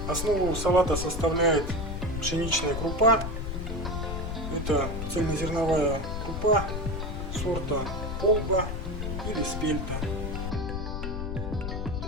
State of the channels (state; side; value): noise; left; rumble, 4 dB below the sound